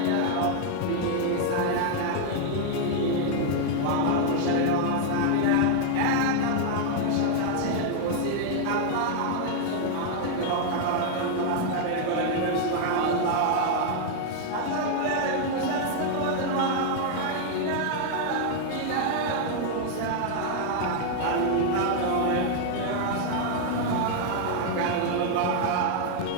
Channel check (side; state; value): both; different; correlation 0.00